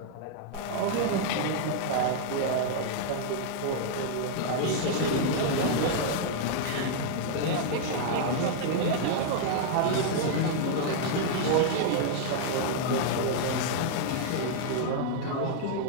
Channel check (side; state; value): both; different; correlation 0.00